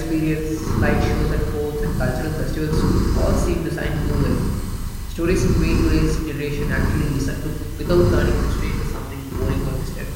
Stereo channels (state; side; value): identical; both; correlation 1.00